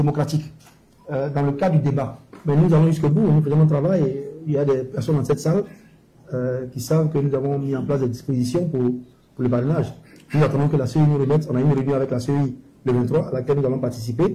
dans le cadre du débat. Mais nous allons jusqu'au bout, nous faisons notre travail et il y a des personnes dans cette salle qui savent que nous avons mis en place des dispositions pour le parrainage. Nous attendons que la CEI nous remette. On a eu une réunion avec la CEI le 23 à laquelle nous allons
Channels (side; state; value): both; identical; correlation 1.00